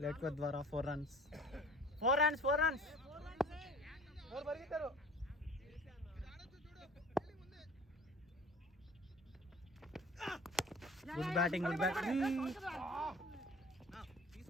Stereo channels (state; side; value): normal; both; correlation 0.47